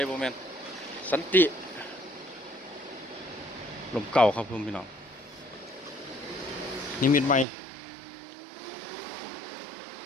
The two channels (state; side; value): drops out; left; at 7.5 s